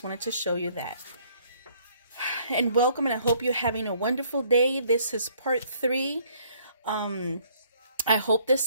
wanted to show you that. And welcome, and I hope you're having a wonderful day. This is part 3. I hope this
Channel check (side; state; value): both; inverted; correlation -0.63